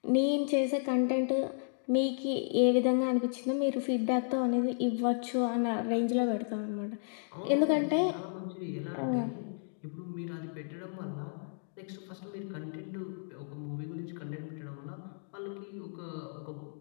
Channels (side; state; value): right; silent; digital silence